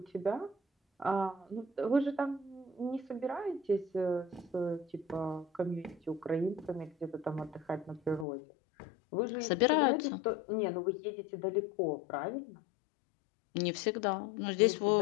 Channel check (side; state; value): right; drops out; at 8.2 s